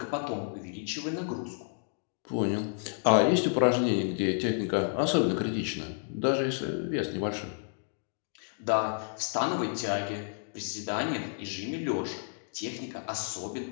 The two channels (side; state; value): right; silent; digital silence